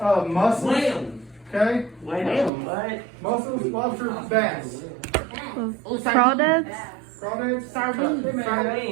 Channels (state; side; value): drops out; left; at 2.5 s